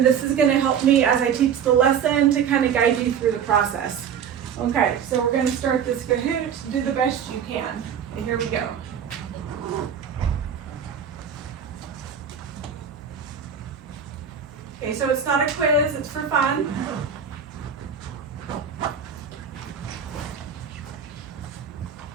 this is going to help me as I teach the lesson to kind of guide you through the process. Okay, so we're going to start this Kahoot. Do the best you can. And here we go. Okay, so it's not a quiz, it's for fun.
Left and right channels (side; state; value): left; quieter; 7.6 dB